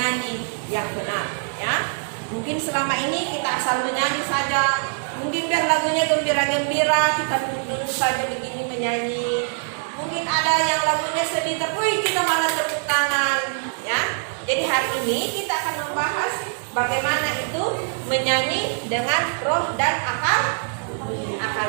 yang benar ya. Mungkin selama ini kita asal menyanyi saja, mungkin biar lagunya gembira-gembira kita duduk saja begini menyanyi. Mungkin ada yang lagunya sedih, tapi kita malah tepuk tangan ya. Jadi hari ini kita akan membahas bagaimana itu menyanyi dengan roh dan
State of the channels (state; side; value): silent; left; 63 dB below the other